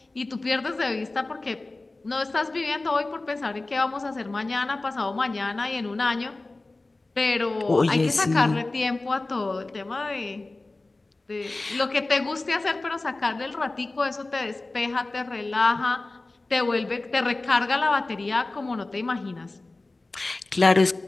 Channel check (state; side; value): quieter; right; 3.1 dB